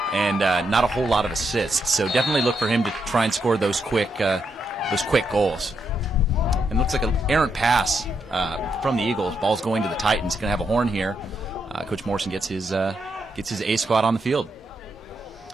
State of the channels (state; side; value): normal; both; correlation 0.81